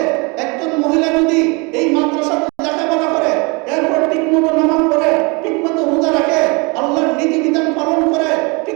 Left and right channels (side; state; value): left; quieter; 29.7 dB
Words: একজন মহিলা যদি এই মাদ্রাসাতে লেখাপড়া করে, এরপর ঠিকমতো নামাজ পড়ে, ঠিকমতো রোজা রাখে, আল্লাহর নীতি বিধান পালন করে,